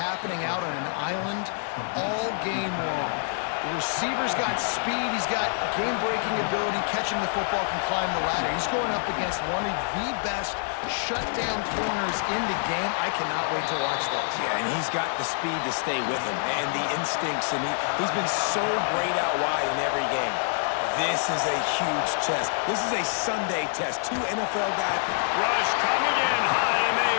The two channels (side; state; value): right; silent; 61 dB below the other